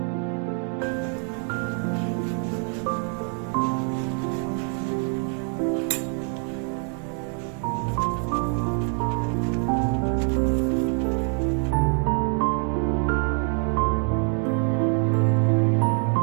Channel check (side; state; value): left; quieter; 38.4 dB